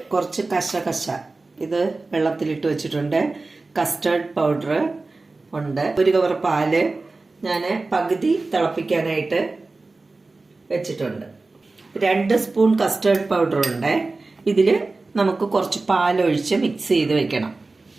കുറച്ച് കശ ഇത് വെള്ളത്തിലിട്ട് വെച്ചിട്ടുണ്ട്. കസ്റ്റർഡ് പൗഡർ ഉണ്ട്. ഒരു കവർ പാല് ഞാൻ പകുതി തിളപ്പിക്കാനായിട്ട് വെച്ചിട്ടുണ്ട്. 2 സ്പൂൺ കസ്റ്റർഡ് പൗഡർ ഉണ്ട്. ഇതിൽ നമുക്ക് കുറച്ച് പാലൊഴിച്ച് മിക്സ് ചെയ്ത് വെക്കണം.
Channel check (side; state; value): left; quieter; 3.5 dB